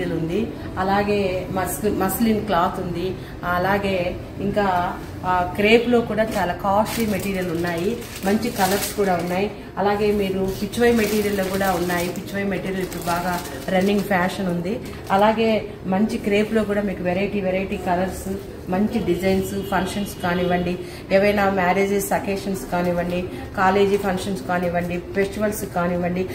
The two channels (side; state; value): both; identical; correlation 1.00